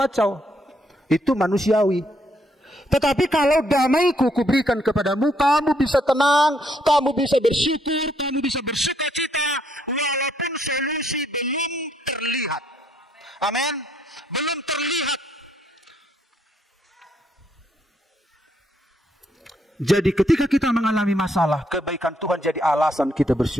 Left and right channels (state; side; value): normal; both; correlation 0.72